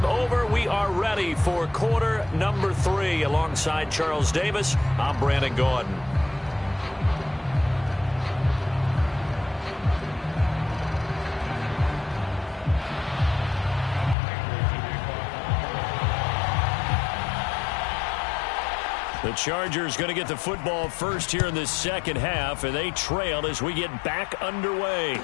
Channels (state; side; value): drops out; right; at 14.2 s